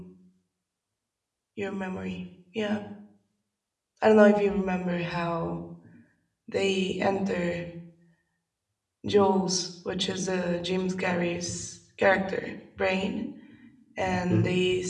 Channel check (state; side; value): identical; both; correlation 1.00